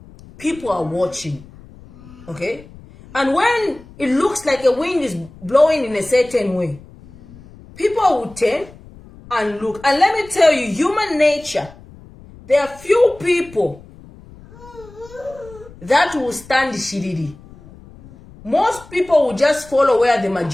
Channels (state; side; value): noise; left; rumble, 21 dB below the sound